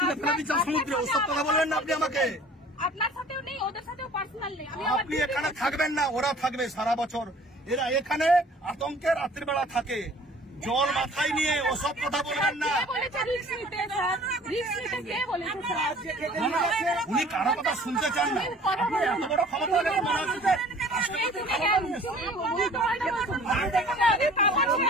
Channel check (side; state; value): both; normal; correlation 0.50